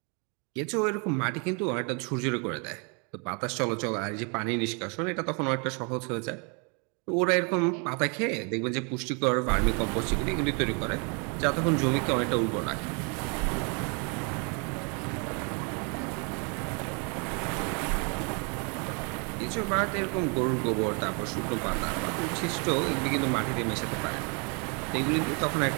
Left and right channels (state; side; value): quieter; left; 35.2 dB